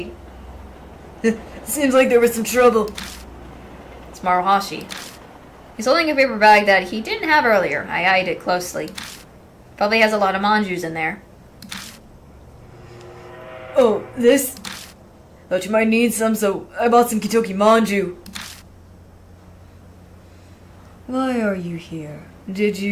Seems like there was some trouble. It's Maruhashi. He's holding a paper bag that he didn't have earlier. I eyed it closely. Probably has a lot of manjus in there. Oh, this? Thought you might need some, so I bought some Kentucky manju. Why are you here? Did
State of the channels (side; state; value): both; identical; correlation 1.00